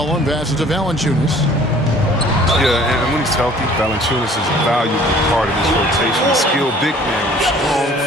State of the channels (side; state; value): both; normal; correlation 0.52